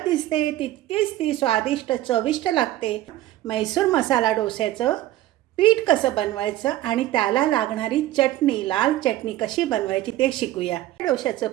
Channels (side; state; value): left; quieter; 14.8 dB